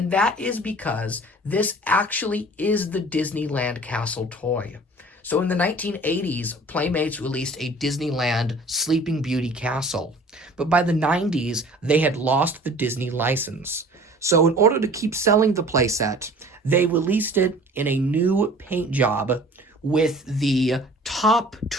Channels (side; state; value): both; normal; correlation 0.47